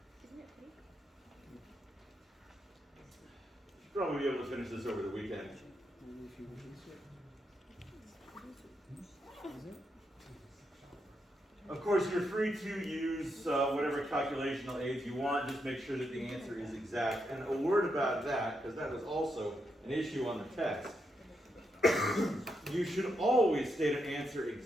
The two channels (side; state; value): both; normal; correlation 0.82